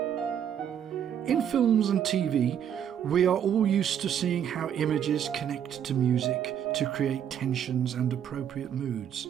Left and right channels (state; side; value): quieter; left; 9.1 dB